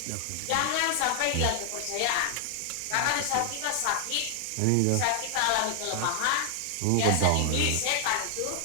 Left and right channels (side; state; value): both; different; correlation 0.00